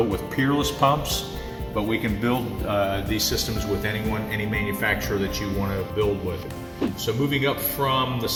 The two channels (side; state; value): both; identical; correlation 1.00